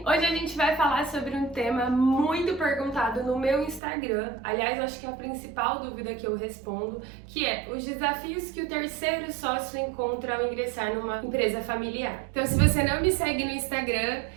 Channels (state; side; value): drops out; left; at 3.8 s